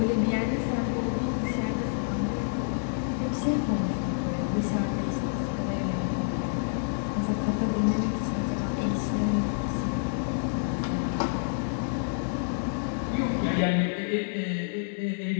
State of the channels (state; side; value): silent; right; 59 dB below the other